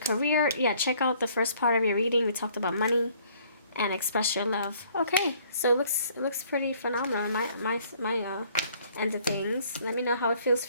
career. Yeah, check out the first part of your reading. We talked about money and express your love. Okay, so it looks pretty phenomenal. My end of things. Let me know how it feels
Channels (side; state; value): both; inverted; correlation -0.60